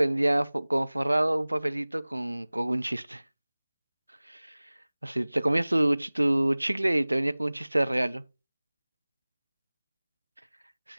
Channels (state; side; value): inverted; both; correlation -1.00